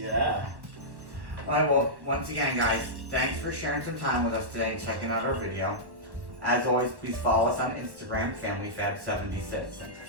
Alright, well, once again, guys, thanks for sharing some time with us today and checking out our video. As always, please follow us on Instagram, Familyfab76.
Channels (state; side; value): late; left; 1.1 ms